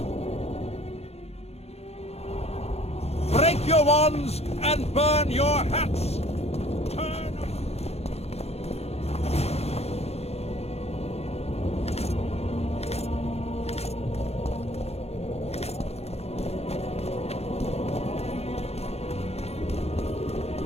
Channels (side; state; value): right; late; 0.30 ms